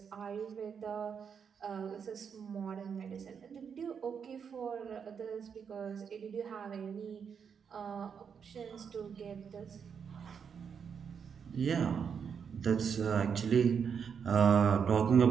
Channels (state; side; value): quieter; left; 6.9 dB